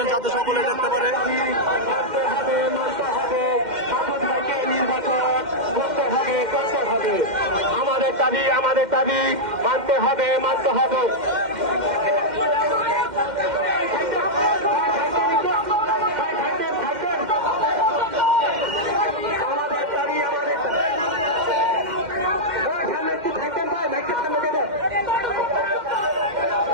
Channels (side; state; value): left; late; 2.1 ms